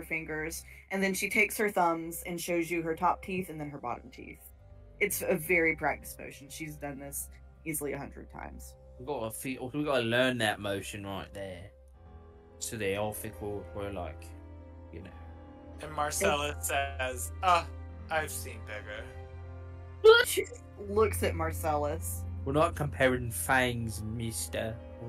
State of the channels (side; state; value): both; identical; correlation 1.00